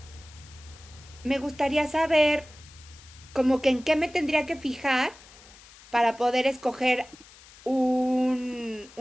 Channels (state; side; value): noise; left; hiss, 22 dB below the sound